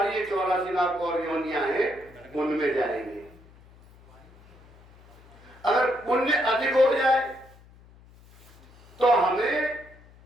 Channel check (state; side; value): noise; left; hum, 25 dB below the sound